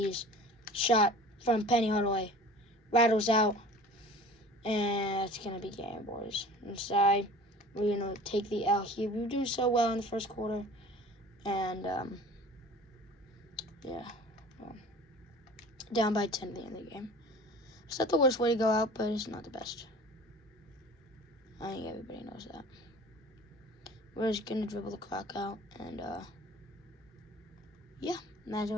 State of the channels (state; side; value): normal; both; correlation 0.43